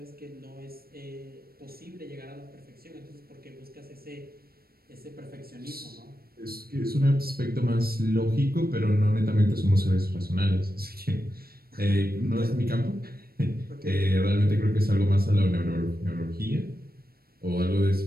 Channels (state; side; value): late; left; 0.44 ms